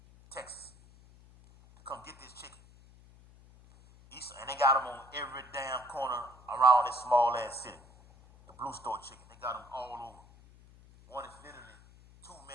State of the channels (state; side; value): noise; left; hum, 23 dB below the sound